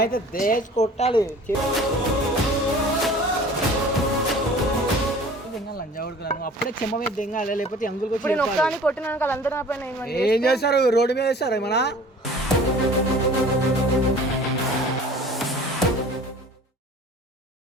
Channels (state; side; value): normal; both; correlation 0.46